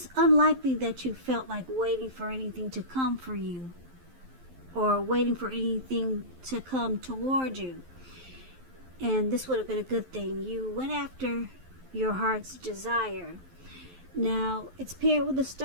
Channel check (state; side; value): late; left; 11 ms